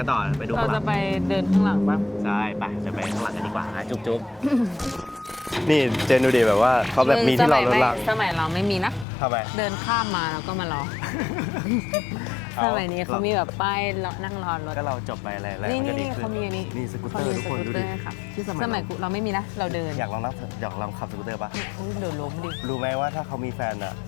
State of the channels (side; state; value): right; drops out; at 9.1 s